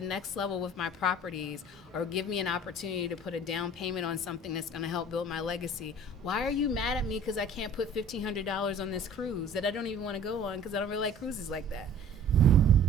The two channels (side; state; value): both; normal; correlation 0.48